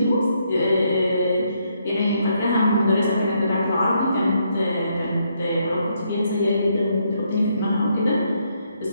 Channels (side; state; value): both; inverted; correlation -0.75